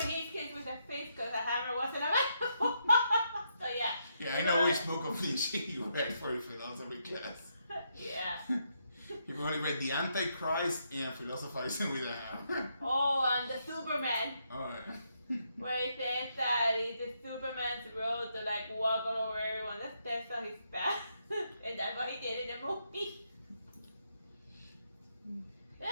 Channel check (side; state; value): both; inverted; correlation -0.78